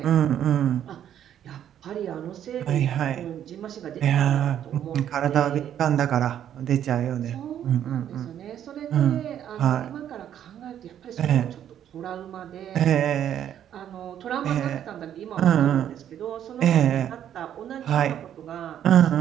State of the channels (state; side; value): quieter; left; 10.2 dB